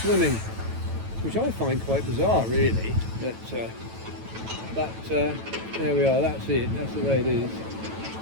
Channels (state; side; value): late; left; 9.1 ms